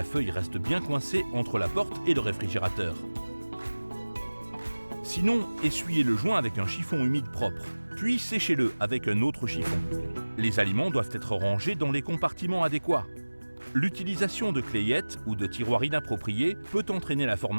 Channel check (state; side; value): inverted; both; correlation -1.00